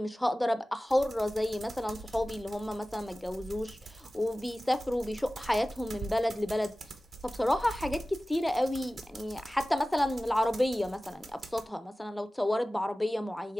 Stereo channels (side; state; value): both; normal; correlation 0.97